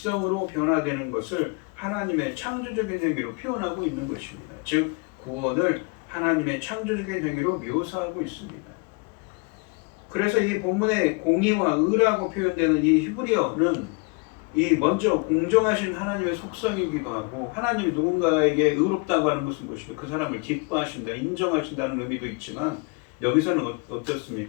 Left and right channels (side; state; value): right; quieter; 32.2 dB